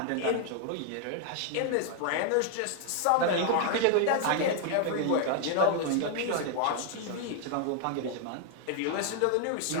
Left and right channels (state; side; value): different; both; correlation 0.00